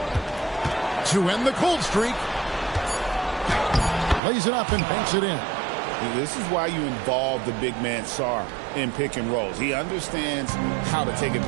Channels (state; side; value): drops out; left; at 4.2 s